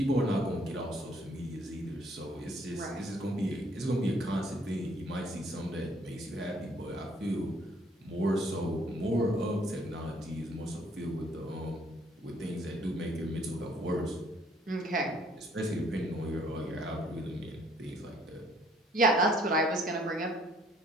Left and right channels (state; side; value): normal; both; correlation 0.63